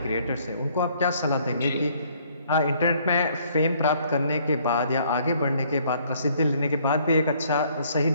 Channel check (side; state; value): both; inverted; correlation -0.63